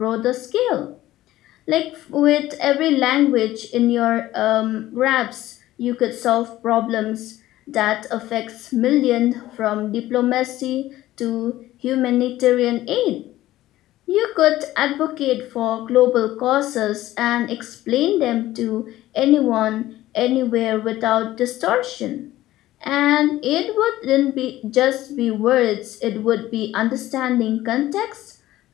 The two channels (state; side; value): quieter; right; 15.3 dB